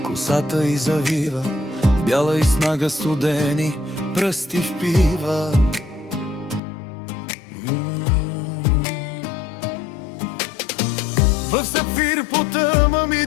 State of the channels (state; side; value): drops out; right; at 6.6 s